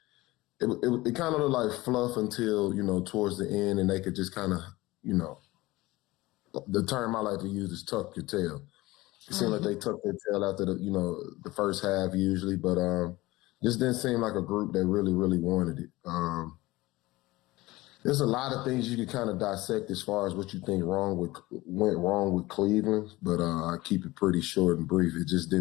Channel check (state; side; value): quieter; right; 19.6 dB